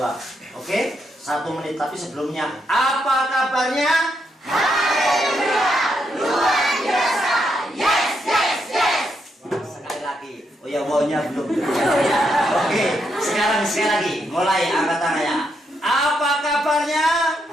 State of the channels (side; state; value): both; normal; correlation 0.79